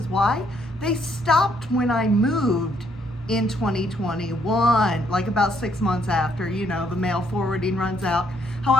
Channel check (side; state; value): both; normal; correlation 0.70